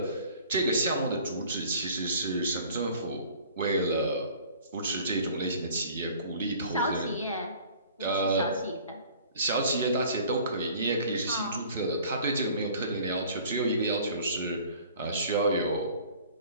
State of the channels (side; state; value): both; inverted; correlation -0.50